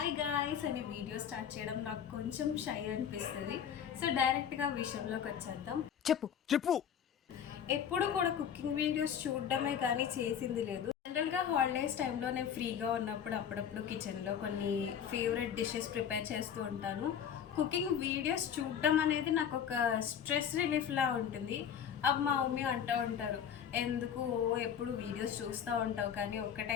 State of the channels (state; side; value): quieter; right; 8.5 dB